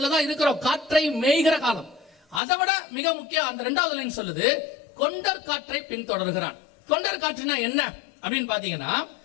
தான் இருக்கிறோம். காற்றை மேய்கிற காலம். அதை விட மிக முக்கியம், அந்த 2வது லைன் சொல்லுது, கொண்டர் காற்றை பின்தொடர்கிறான். கொண்டர் காற்றுனா என்ன அப்படின்னு பாத்தீங்கன்னா,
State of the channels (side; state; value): right; drops out; at 2.4 s